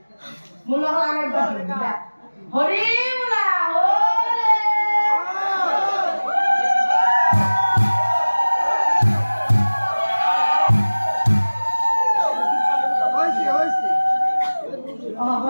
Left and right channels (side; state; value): both; inverted; correlation -1.00